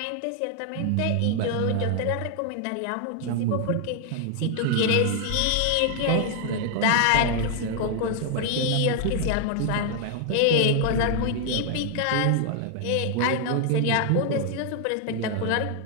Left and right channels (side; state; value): both; different; correlation 0.00